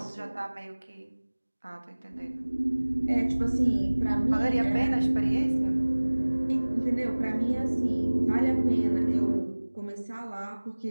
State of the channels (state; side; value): inverted; both; correlation -1.00